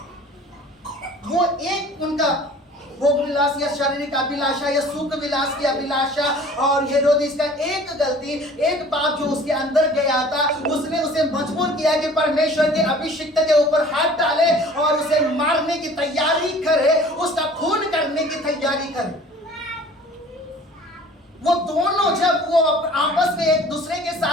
वो एक उनका भोग विलास या शारीरिक अभिलाषा या सुख विलास की अभिलाषा, और हेरोदिस का एक गलती, एक पाप जो उसके अंदर गया था, उसने उसे मजबूर किया कि परमेश्वर के अभिषिक्त के ऊपर हाथ डाले और उसे मारने की तैयारी करे, उसका खून करने की तैयारी करे। वो दोनों जब वो आपस में एक दूसरे के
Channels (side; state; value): both; normal; correlation 0.48